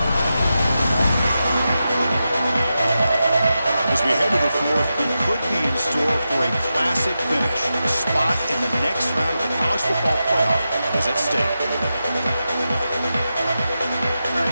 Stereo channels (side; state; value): both; inverted; correlation -0.90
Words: The As we head to the fourth, we could be in store for a classic finish. A spot in the next round of the college football playoff is at stake.